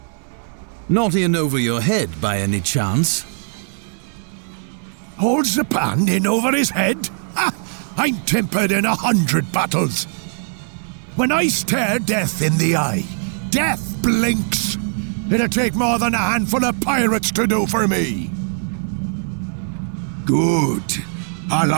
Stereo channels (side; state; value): left; silent; digital silence